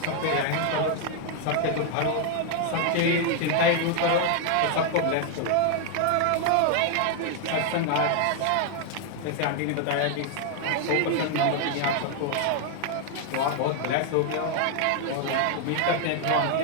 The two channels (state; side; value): different; both; correlation 0.00